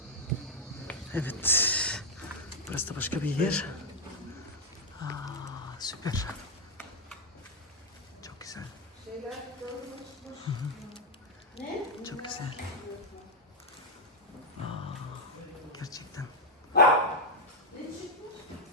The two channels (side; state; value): both; normal; correlation 0.00